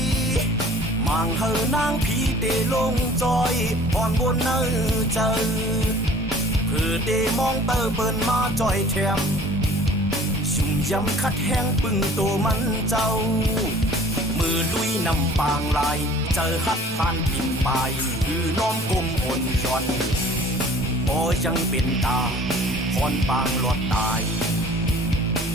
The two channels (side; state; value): both; normal; correlation 0.49